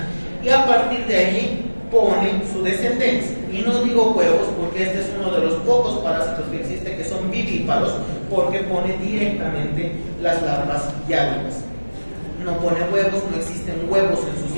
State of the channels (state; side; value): inverted; both; correlation -1.00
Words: y a partir de allí pone su descendencia. Y no digo huevos porque este es uno de los pocos parásitos que existe que son vivíparos, porque pone directamente las larvas ya vivas. No pone huevos, no existen huevos en su